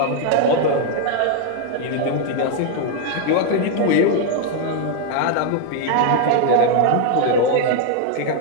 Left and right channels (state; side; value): different; both; correlation 0.00